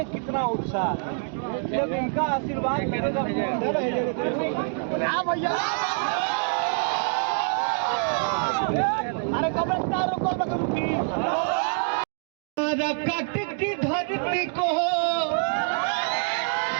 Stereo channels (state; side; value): silent; left; digital silence